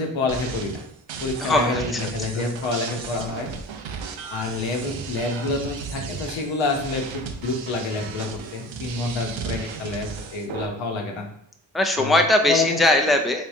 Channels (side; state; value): both; normal; correlation 0.43